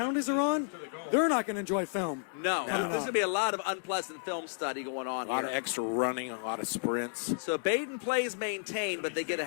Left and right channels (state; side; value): silent; right; digital silence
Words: are on, they're not going to enjoy film. No. There's going to be a lot of unpleasant film study going on A lot here. of extra running, a lot of sprints. So Badin plays maintained, but they get a